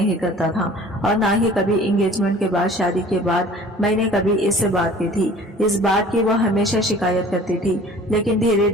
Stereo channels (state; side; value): normal; both; correlation 0.47